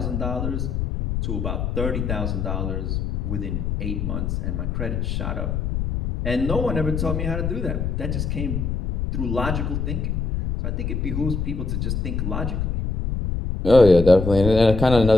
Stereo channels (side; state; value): left; noise; rumble, 1 dB below the sound